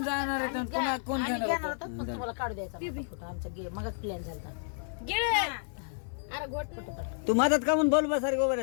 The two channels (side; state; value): right; silent; 57 dB below the other